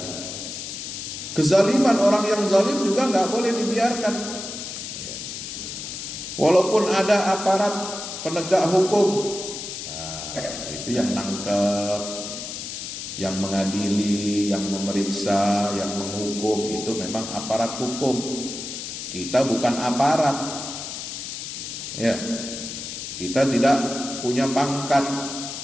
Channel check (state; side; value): noise; left; hiss, 7 dB below the sound